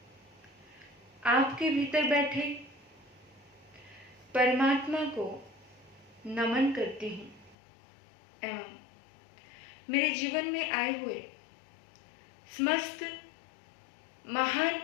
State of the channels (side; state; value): right; drops out; at 7.6 s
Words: आपके भीतर बैठे परमात्मा को नमन करती हूँ एवं मेरे जीवन में आए हुए समस्त महान